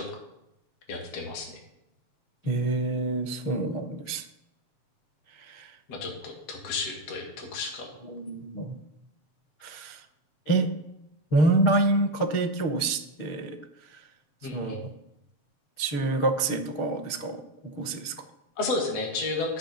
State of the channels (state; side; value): late; right; 6.5 ms